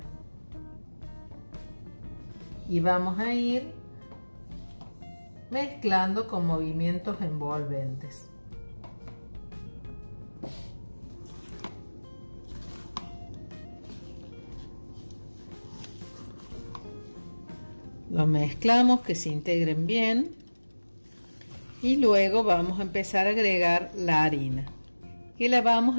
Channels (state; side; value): inverted; both; correlation -1.00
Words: Y vamos a ir mezclando con movimientos envolventes. Lo mezclamos que se integren bien y luego vamos a empezar a agregar la harina, que la vamos